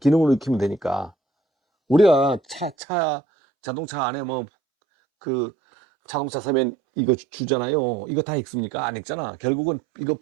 익히면 되니까. 우리가 자동차 안에 뭐 그 자동차 사면 이거 주잖아요. 이거 다 읽습니까? 안 읽잖아. 결국은 이거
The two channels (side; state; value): left; drops out; at 2.8 s